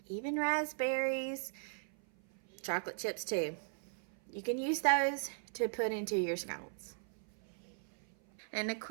even raspberries, chocolate chips too. You can use those to put into your scones. And a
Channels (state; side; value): silent; left; 52 dB below the other